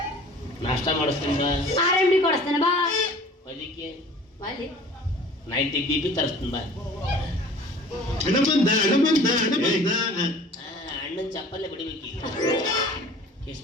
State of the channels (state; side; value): normal; both; correlation 0.46